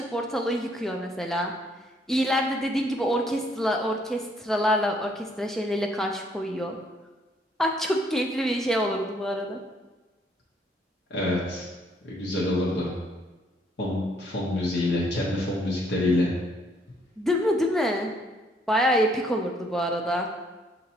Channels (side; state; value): both; normal; correlation 0.67